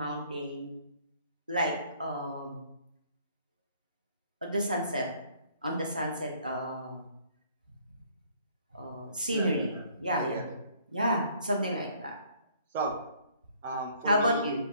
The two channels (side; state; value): both; inverted; correlation -0.61